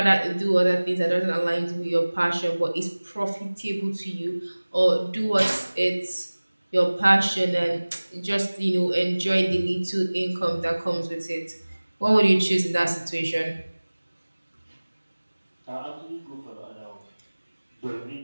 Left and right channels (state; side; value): inverted; both; correlation -1.00